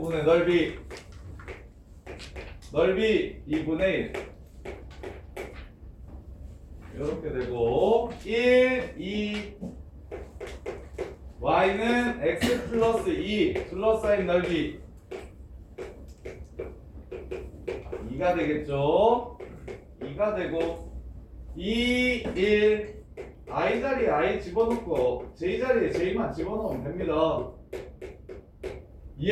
넓이 2분의 1 이렇게 되고 1, 2 y는 x 플러스 2 둘러싸인 넓이 2가 되겠죠. 2가 되고 2, 1 I 자리에 I 집어넣고 J 자리에 J만 집어넣으면 됩니다.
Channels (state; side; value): identical; both; correlation 1.00